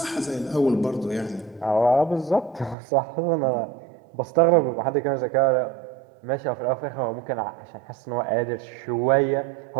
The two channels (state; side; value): drops out; left; at 2.8 s